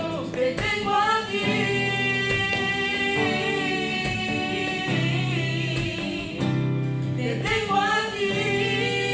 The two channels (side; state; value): both; identical; correlation 1.00